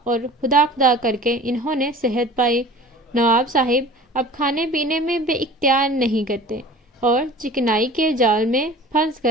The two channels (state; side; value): normal; both; correlation 0.42